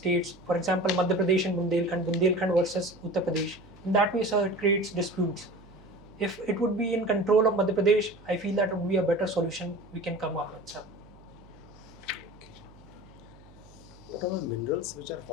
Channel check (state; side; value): noise; right; hum, 23 dB below the sound